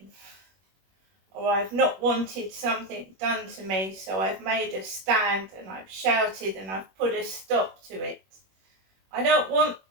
Or I've not wanted something done to me, so I've made a stand and I've shouted and I've put a stop to it. I don't want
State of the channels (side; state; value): left; late; 21 ms